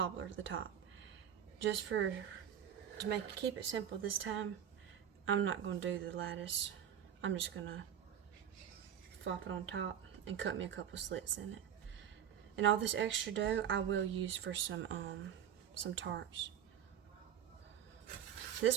at the top. Just to keep it simple this time, I'm not going to do the lattice. I'm just going to flop it on top and cut me a couple slits in it. And all this extra dough I will use for some tarts. This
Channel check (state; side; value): quieter; left; 9.3 dB